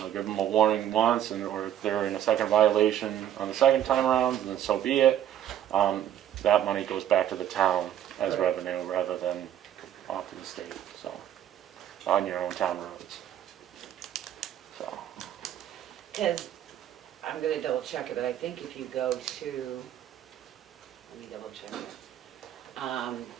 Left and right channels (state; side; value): quieter; left; 10.9 dB